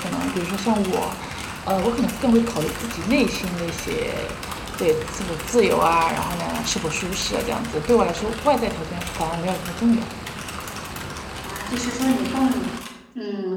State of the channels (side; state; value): both; identical; correlation 1.00